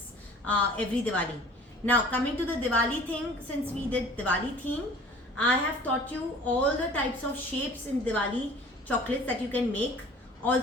every Diwali. Now coming to the Diwali thing, since we did Diwali theme, I have taught you all the types of shapes in Diwali chocolates that you can make.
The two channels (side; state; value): both; normal; correlation 0.47